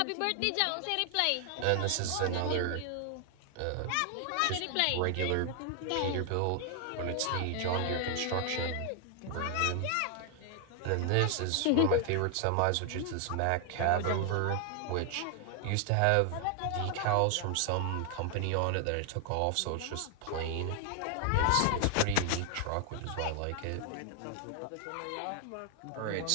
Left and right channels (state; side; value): different; both; correlation 0.00